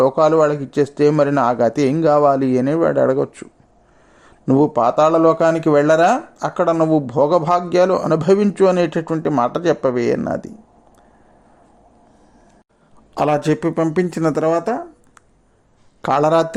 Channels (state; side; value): identical; both; correlation 1.00